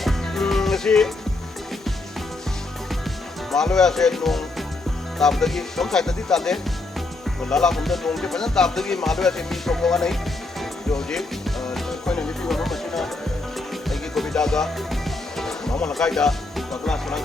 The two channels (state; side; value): quieter; right; 3.1 dB